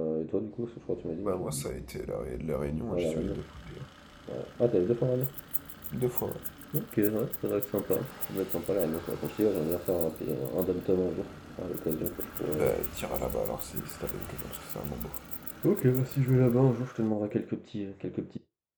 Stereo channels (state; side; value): identical; both; correlation 1.00